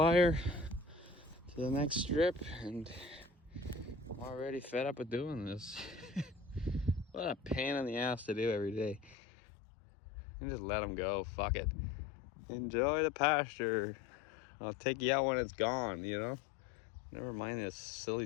to the next strip, and I'm already fed up with doing this. What a pain in the ass to do every day. And just let them go. Fuck it. Enjoy the pasture. I'll take you out when it's gone, you know? Never mind this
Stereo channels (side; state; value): right; drops out; at 9.2 s